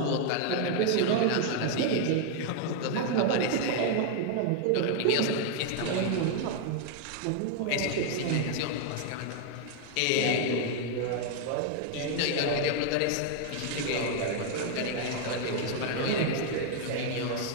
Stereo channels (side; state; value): both; different; correlation 0.00